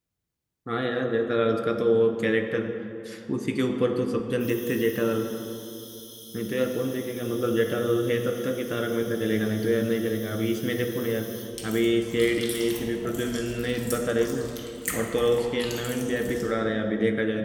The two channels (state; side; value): identical; both; correlation 1.00